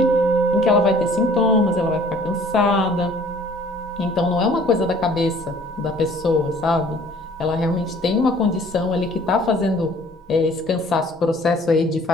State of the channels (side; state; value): both; normal; correlation 0.54